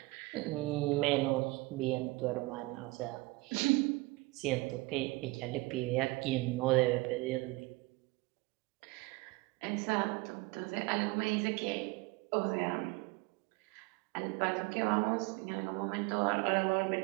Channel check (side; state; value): left; quieter; 22.6 dB